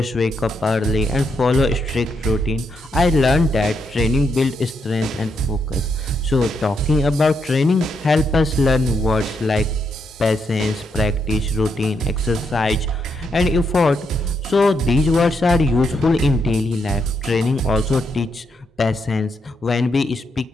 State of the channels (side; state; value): both; normal; correlation 0.79